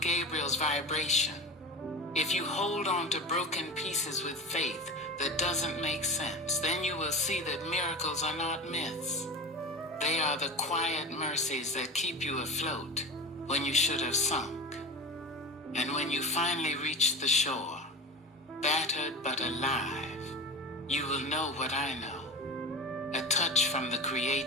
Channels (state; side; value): normal; both; correlation 0.31